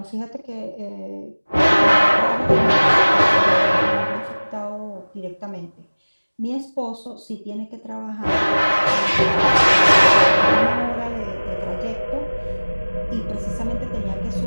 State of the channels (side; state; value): both; inverted; correlation -1.00